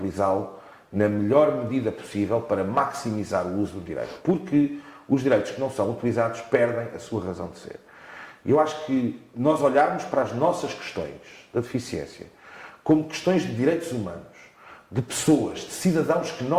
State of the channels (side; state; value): both; identical; correlation 1.00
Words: na melhor medida possível para maximizar o uso do direito. Porque os direitos que não são utilizados perdem a sua razão de ser. E eu acho que nós olharmos para as nossas questões da deficiência como questões de direitos humanos, de pessoas, de cidadãos que